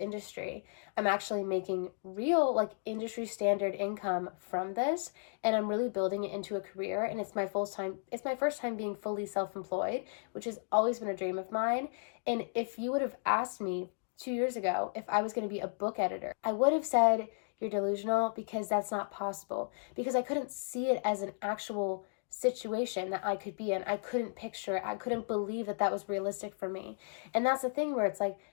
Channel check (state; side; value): silent; right; digital silence